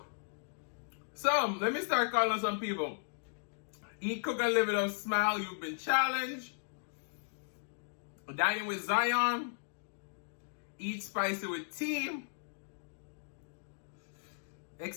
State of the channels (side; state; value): right; silent; digital silence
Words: So, let me start calling some people. Eat, cook, and live it up. Smile. You've been challenged. Dining with Zion. Eat spicy with Team.